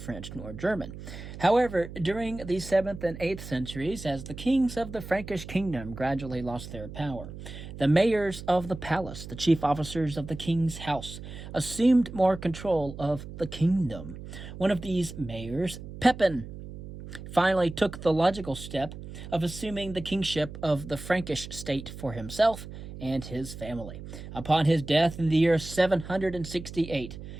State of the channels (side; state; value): right; noise; hum, 12 dB below the sound